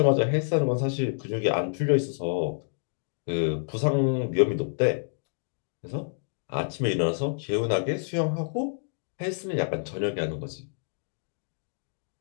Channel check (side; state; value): right; silent; digital silence